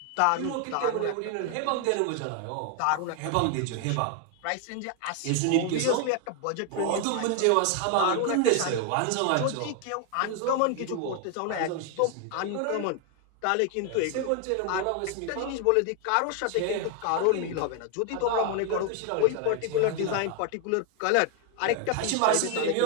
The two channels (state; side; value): different; both; correlation 0.01